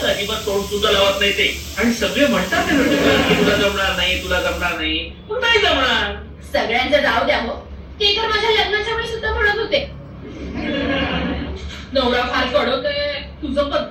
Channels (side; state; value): both; identical; correlation 1.00